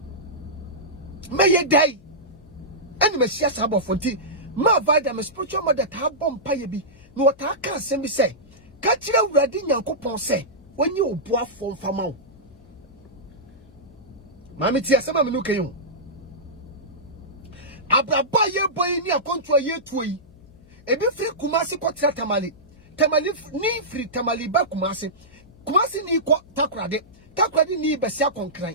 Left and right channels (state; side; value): noise; left; hum, 26 dB below the sound